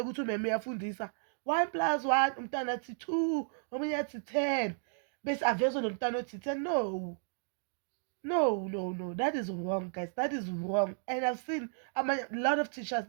umem uyafundisa 1+1 umntwana athi 2, omunye athi 10, bese avezwe nomntwana othi 10. No, that is wrong, guys. That is wrong. And I've seen a lot of teachers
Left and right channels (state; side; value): silent; left; digital silence